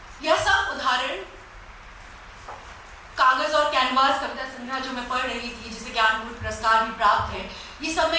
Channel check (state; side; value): identical; both; correlation 1.00